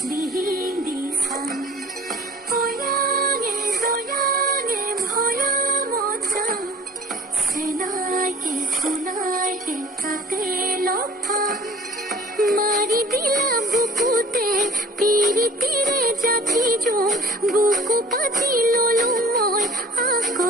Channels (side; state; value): both; normal; correlation 0.48